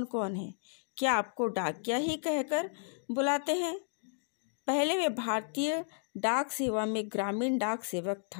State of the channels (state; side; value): silent; right; digital silence